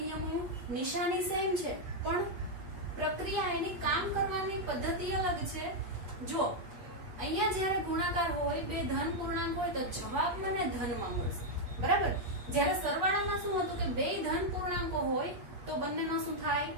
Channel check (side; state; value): left; late; 8.4 ms